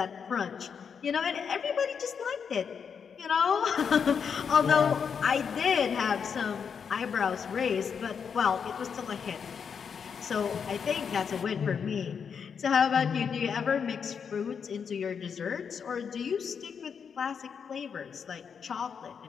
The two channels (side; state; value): right; quieter; 6.7 dB